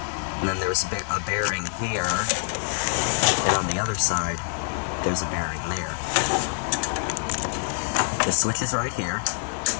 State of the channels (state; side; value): silent; right; digital silence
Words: and then there's a bearing here, and on the other side there's a bearing there. The switch is right here,